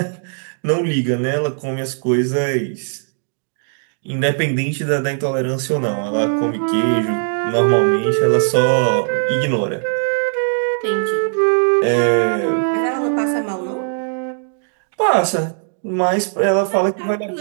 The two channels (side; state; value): left; silent; digital silence